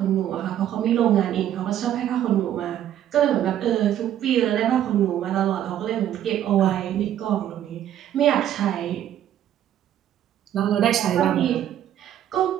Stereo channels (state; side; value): quieter; left; 11.1 dB